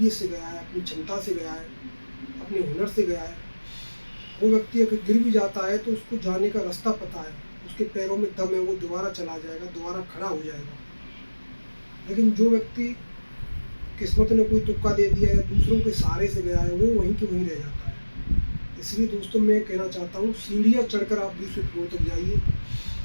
से गया है, अपनी क्षमता से गया है, अपने हुनर से गया है, वो व्यक्ति अगर गिर भी जाता है तो उसको जाने का रास्ता पता है, उसके पैरों में दम है, वो दोबारा चला जाएगा, दोबारा खड़ा हो जाएगा। लेकिन जो व्यक्ति किस्मत ने कोई तुक्का दे दिया या दूसरों के सहारे से गया है, वो वहीं के वहीं रह जाता है। इसलिए दोस्तों मैं कहना चाहता हूँ, सीढ़ियाँ चढ़कर आप 20वें फ्लोर तक जाइए।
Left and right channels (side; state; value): both; inverted; correlation -1.00